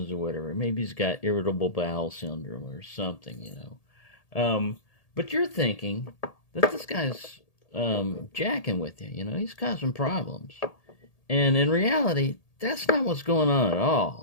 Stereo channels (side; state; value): right; late; 1.8 ms